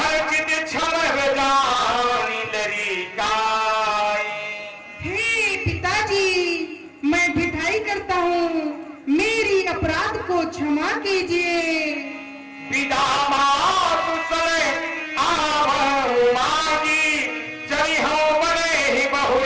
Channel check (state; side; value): identical; both; correlation 1.00